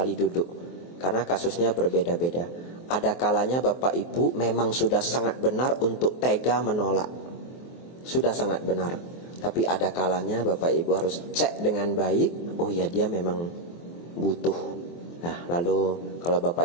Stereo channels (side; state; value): right; late; 23 ms